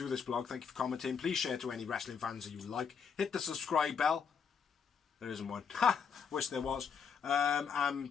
this blog. Thank you for commenting. Please share to any wrestling fans that you like. Hit the subscribe bell. There isn't one. Ha! Wish there was.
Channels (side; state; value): right; quieter; 6.6 dB